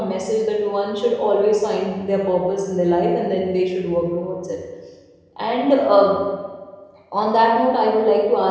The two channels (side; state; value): both; identical; correlation 1.00